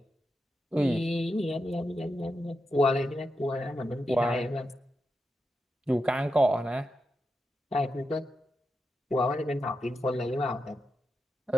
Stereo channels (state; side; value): normal; both; correlation 0.87